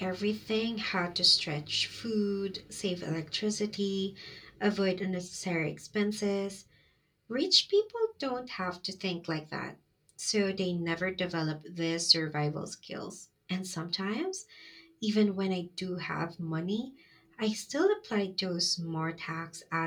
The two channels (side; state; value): both; identical; correlation 1.00